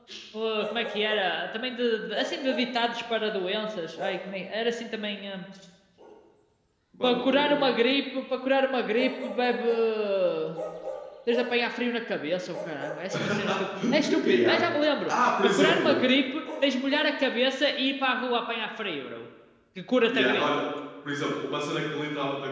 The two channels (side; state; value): both; identical; correlation 1.00